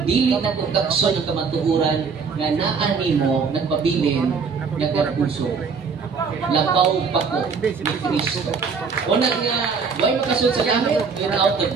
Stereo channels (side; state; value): left; quieter; 5.4 dB